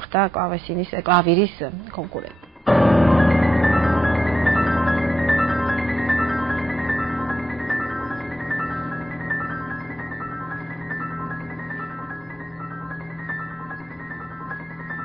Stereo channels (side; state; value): both; normal; correlation 0.83